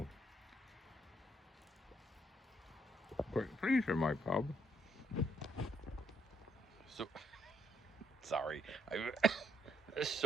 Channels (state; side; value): normal; both; correlation 0.71